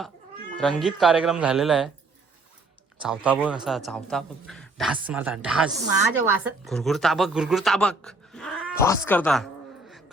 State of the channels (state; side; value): quieter; left; 3.2 dB